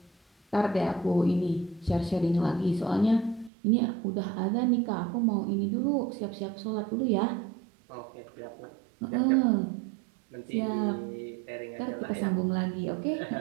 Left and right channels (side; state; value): left; drops out; at 3.5 s